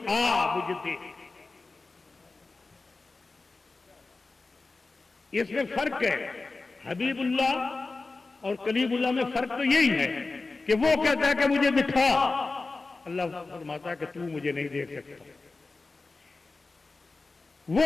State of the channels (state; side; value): quieter; right; 3.7 dB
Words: آ مجھے دیکھ، اس میں فرق ہے۔ حبیب اللہ اور کلیم اللہ میں فرق تو یہی ہے کہ وہ کہتا ہے کہ مجھے دکھا، اللہ فرماتا ہے کہ تو مجھے نہیں دیکھ سکتا۔